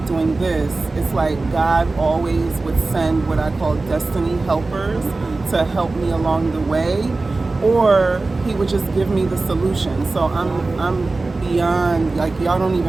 doing this? It's like God always would send what I call destiny helpers to help me along the way, or he would just give me the solution. So I'm beyond, like, y'all don't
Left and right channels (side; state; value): left; quieter; 3.4 dB